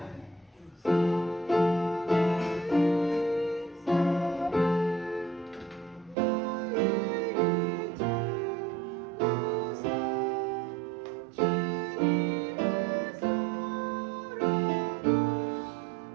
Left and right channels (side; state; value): left; drops out; at 6.2 s